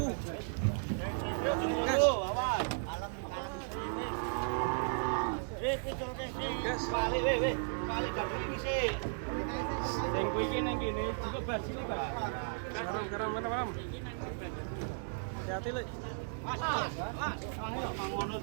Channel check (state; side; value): silent; left; digital silence